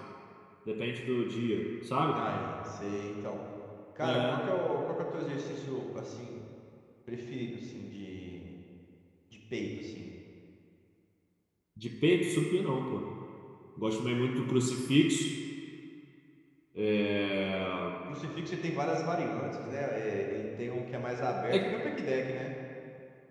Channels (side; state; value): both; identical; correlation 1.00